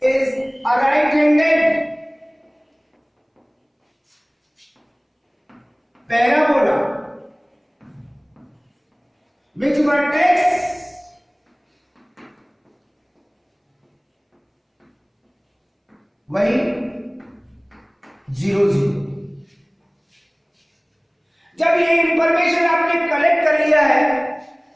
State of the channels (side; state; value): both; identical; correlation 1.00